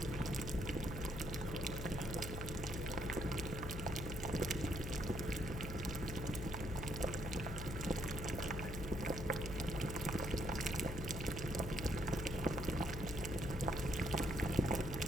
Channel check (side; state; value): left; noise; hum, 6 dB below the sound